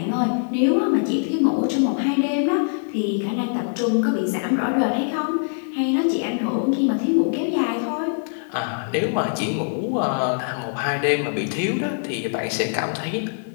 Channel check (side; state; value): right; silent; digital silence